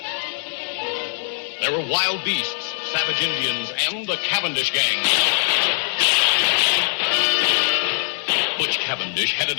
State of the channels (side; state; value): right; silent; digital silence